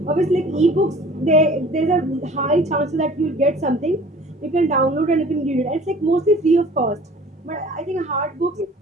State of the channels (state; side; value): normal; both; correlation 0.48